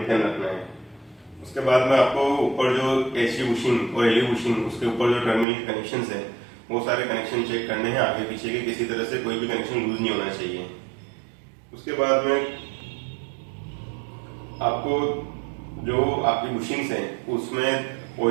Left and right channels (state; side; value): drops out; left; at 5.5 s